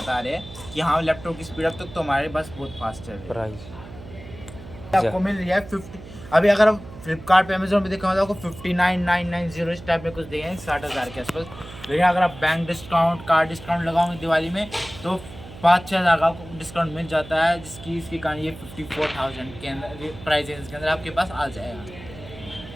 रहे हैं कि हाँ लैपटॉप की स्पीड अप तक तो हमारे पास बहुत फास्ट चल रही है। आपको मिल रही है 50। अभी अगर आप फ्लिपकार्ट पे अमेजोन पे देखा तो आपको 59,990 इस टाइप में कुछ देंगे 60,000 के आसपास। लेकिन अगर आप बैंक डिस्काउंट, कार्ड डिस्काउंट लगाओगे दिवाली में तो 5-6 हज़ार का आपको डिस्काउंट मिल जाता है, इसके कारण ये 54,000 के अंदर प्राइस रेंज के अंदर आपके पास आ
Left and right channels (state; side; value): noise; right; hum, 15 dB below the sound